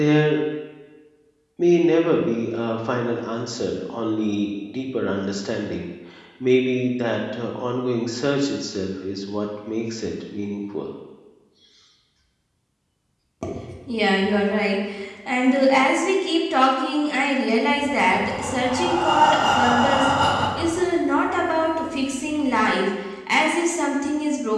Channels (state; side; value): identical; both; correlation 1.00